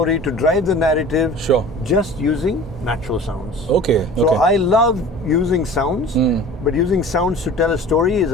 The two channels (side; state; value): both; normal; correlation 0.42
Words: to drive the narrative, just using natural sounds. Okay. So I love using sounds, but using sounds to tell a story is